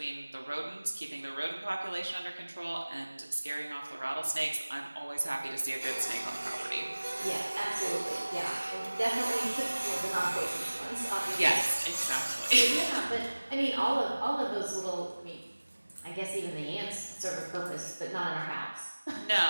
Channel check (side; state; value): both; inverted; correlation -1.00